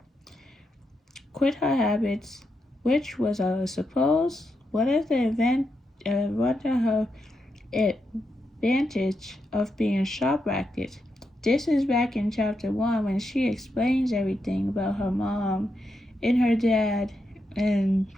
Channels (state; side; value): normal; both; correlation 0.84